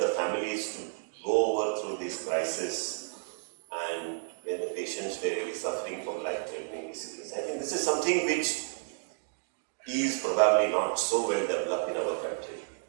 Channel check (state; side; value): silent; left; 57 dB below the other